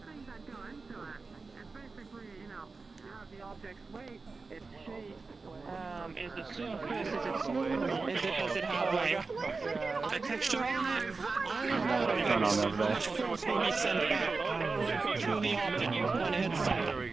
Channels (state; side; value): quieter; left; 4.1 dB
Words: the objects Does it have like a texture on it? Turn on over there. Force will be sent back through the optic when it hits something.